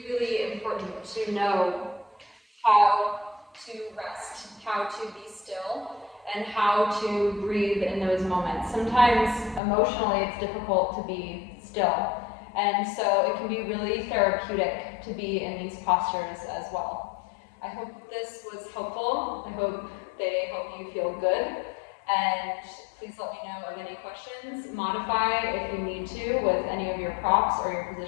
really important to know how to rest, how to be still, and how to breathe in those moments. Sometimes emotionally it's difficult to be still, and so it can be really therapeutic to be in these postures as well. I hope this was helpful. I hope they help you feel good, and please let me know of any questions. Modify if you need to with any of your props or your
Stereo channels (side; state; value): right; drops out; at 9.6 s